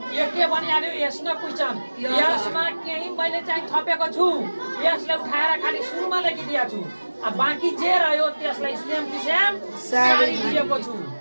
यो के बनिहाल्यो यसमा क्वेसन यसमा केही मैले चाहिँ थपेको छु यसलाई उठाएर खाली सुरुमा लेखिदिएको छु अब बाँकी जे रह्यो त्यसलाई सेम टु सेम सारिदिएको छु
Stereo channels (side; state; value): both; inverted; correlation -1.00